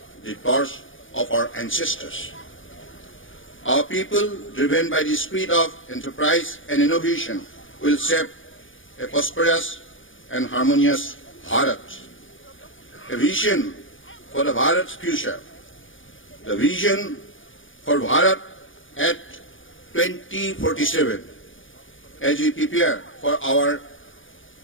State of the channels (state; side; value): late; right; 0.57 ms